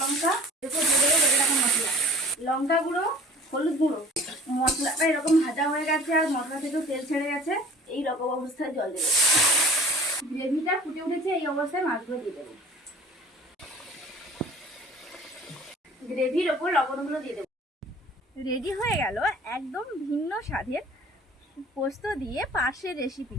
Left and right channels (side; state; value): both; normal; correlation 0.46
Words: লঙ্কা, মশলা, লঙ্কা গুঁড়ো, হলুদ গুঁড়ো। মশলাটা এরকম ভাজা হয়ে গেছে আর মশলা থেকেও তেল ছেড়ে গেছে। এই রকম অবস্থায় জল দেবো। গ্রেভিটা ফুটে উঠেছে, এই অবস্থায় মাছগুলো দিয়ে দেবো। গ্রেভির ওপর লবণগুলো দিয়ে দেবো। রেডি হয়ে গেল একদম ভিন্ন স্বাদের পোস্ত দিয়ে পার্শের রেসিপি।